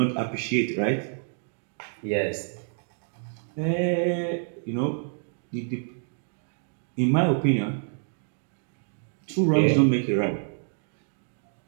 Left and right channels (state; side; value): silent; left; 60 dB below the other